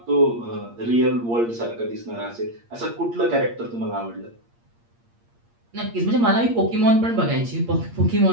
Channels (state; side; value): late; left; 8.6 ms